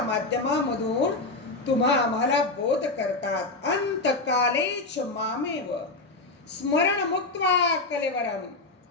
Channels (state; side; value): quieter; right; 3.3 dB